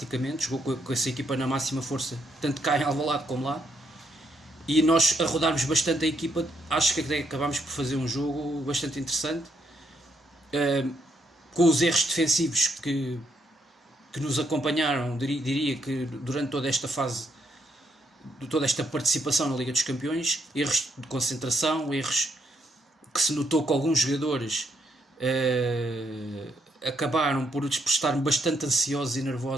jogou com essa equipa na máxima força, tanto cá em Alvalade como lá, e nós a rodarmos bastante a equipa. Acho que acabámos por fazer um jogo bastante interessante, com os erros defensivos que nos acompanharam, diria que durante toda esta fase, toda esta participação na Liga dos Campeões, erros de concentração, erros que se notou que alguns jogadores acabaram por estar bastante ansiosos e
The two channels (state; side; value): normal; both; correlation 0.76